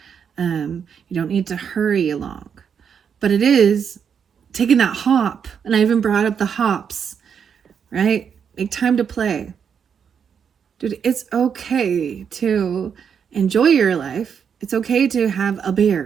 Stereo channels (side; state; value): left; quieter; 7.3 dB